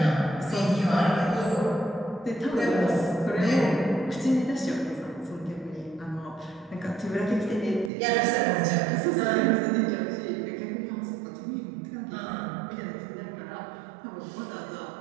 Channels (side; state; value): left; drops out; at 7.9 s